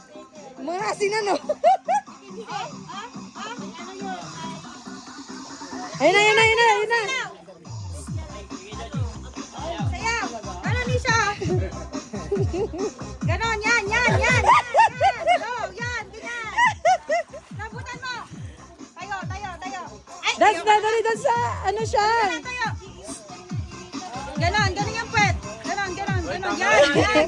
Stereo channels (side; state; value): both; identical; correlation 1.00